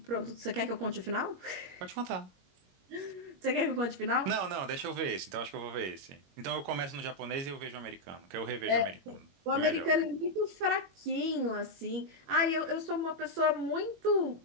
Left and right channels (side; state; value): left; late; 21 ms